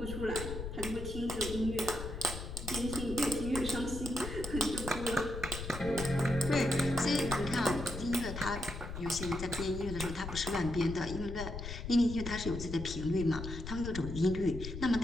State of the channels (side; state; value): left; noise; rumble, 7 dB below the sound